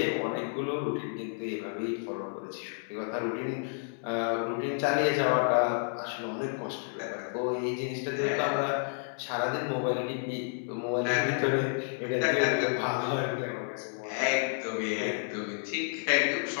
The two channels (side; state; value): right; silent; 57 dB below the other